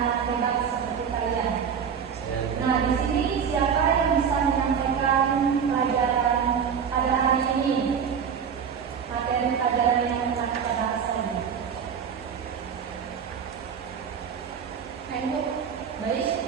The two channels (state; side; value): quieter; left; 7.2 dB